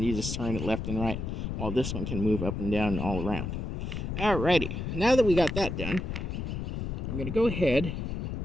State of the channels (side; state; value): left; noise; rumble, 4 dB below the sound